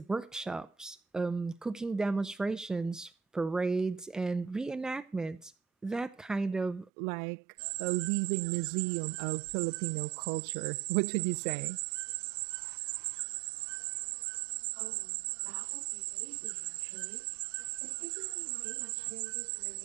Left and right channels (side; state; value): left; drops out; at 6.9 s